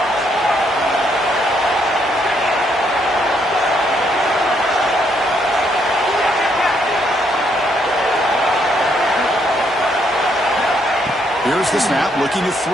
Here's the snap, looking to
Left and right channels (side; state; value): both; normal; correlation 0.72